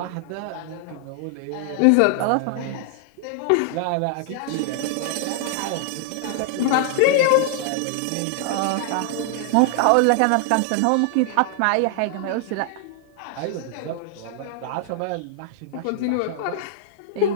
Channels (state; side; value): different; both; correlation 0.00